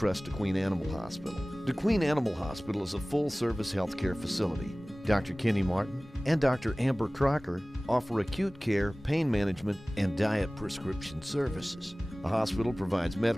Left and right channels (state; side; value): normal; both; correlation 0.98